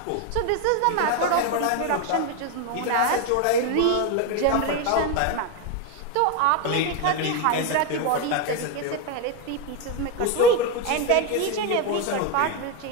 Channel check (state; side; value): different; both; correlation 0.02